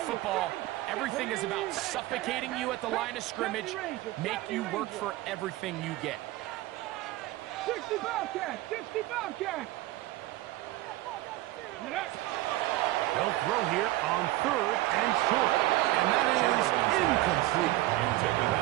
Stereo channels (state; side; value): quieter; left; 17.4 dB